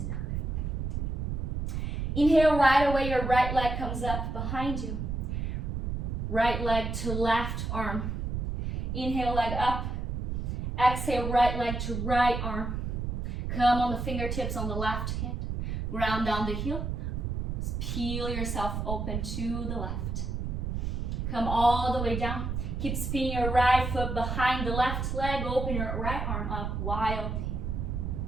dog. Inhale, right away, your right leg comes up behind you. Right leg to left arm. Inhale, leg up. Exhale, right leg to right arm. Come on the fingertips on the left hand. Ground down the heel. Peel yourself open to the left. Come all the way down. Keep spinning your right foot behind the left leg. Open your right arm up wildly.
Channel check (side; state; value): right; noise; rumble, 2 dB below the sound